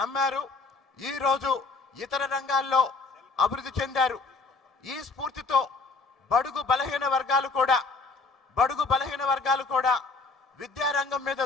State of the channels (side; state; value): right; quieter; 4.0 dB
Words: ఈరోజు ఇతర రంగాల్లో అభివృద్ధి చెందారు. ఈ స్ఫూర్తితో బడుగు బలహీన వర్గాలు కూడా విద్యారంగం మీద